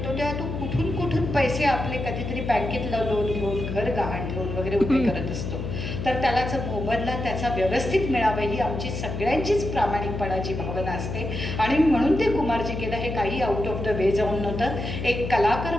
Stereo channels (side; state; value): left; noise; hum, 5 dB below the sound